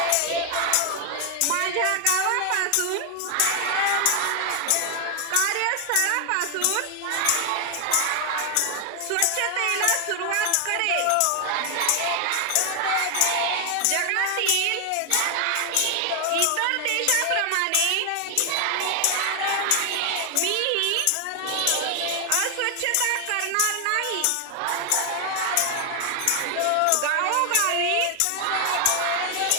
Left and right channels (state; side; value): different; both; correlation 0.00